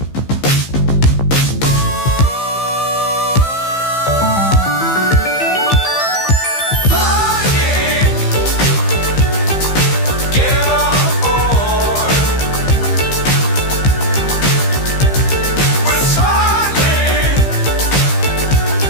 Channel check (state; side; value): late; right; 15 ms